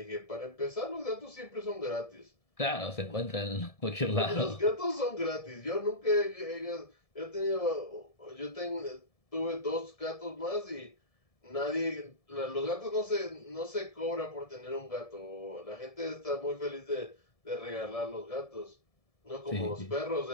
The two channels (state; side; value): late; right; 1.7 ms